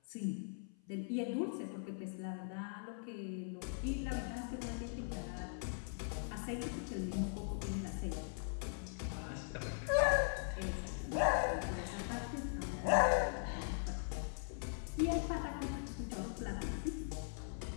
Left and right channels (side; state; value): right; silent; 51 dB below the other